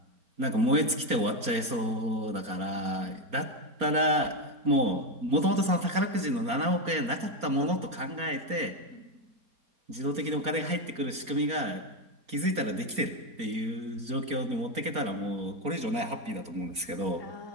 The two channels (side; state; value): left; late; 4.3 ms